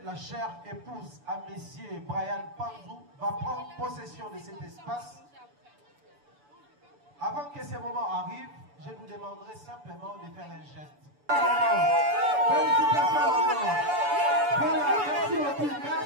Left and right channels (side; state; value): left; late; 6.9 ms